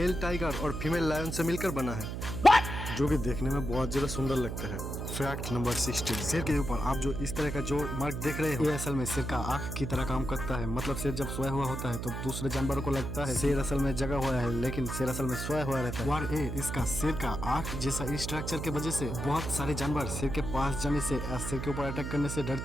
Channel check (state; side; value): noise; right; hum, 5 dB below the sound